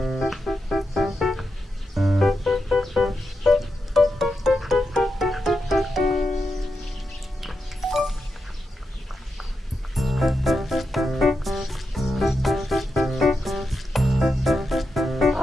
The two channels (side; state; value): both; normal; correlation 0.87